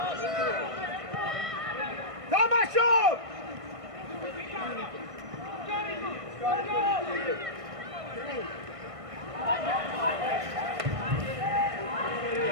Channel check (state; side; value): late; left; 1.6 ms